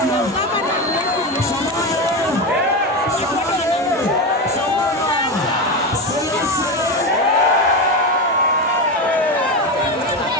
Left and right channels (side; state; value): both; normal; correlation 0.17